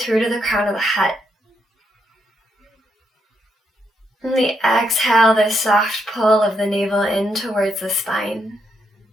to the crown of the head. And the exhale, the soft pull of the navel in towards the spine.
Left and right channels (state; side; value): normal; both; correlation 0.79